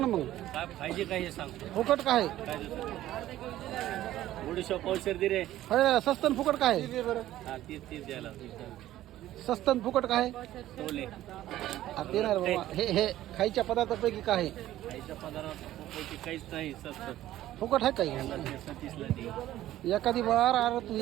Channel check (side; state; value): left; quieter; 14.0 dB